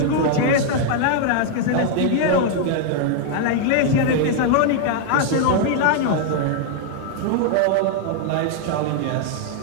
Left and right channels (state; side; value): different; both; correlation 0.00